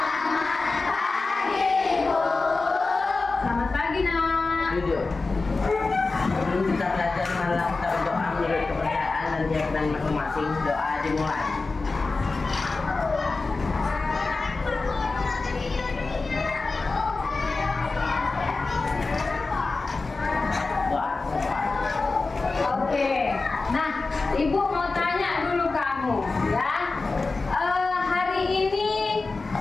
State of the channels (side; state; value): right; quieter; 3.8 dB